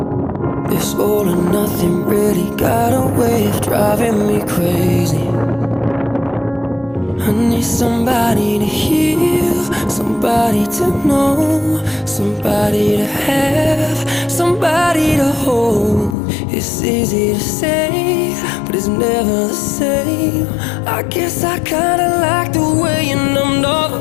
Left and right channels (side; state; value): right; drops out; at 16.2 s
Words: This all or nothing really got a way of driving me crazy. I need somebody to heal, somebody to know, somebody to have, somebody to hold. It's easy to say, but it's never the same. I guess I kinda like the way you numbed all